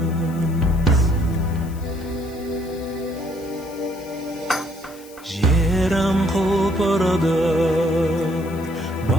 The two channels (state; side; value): noise; left; hiss, 22 dB below the sound